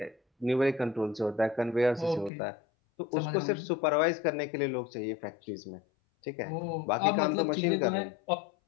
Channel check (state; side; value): drops out; right; at 2.3 s